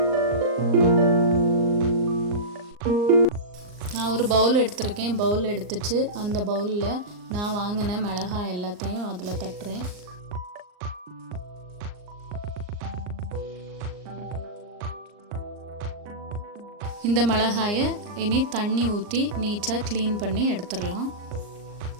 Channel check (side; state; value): left; late; 39 ms